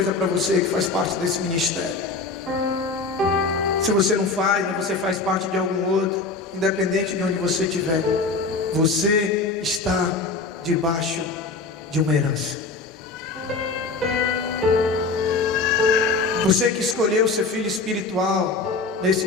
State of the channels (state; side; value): quieter; right; 3.9 dB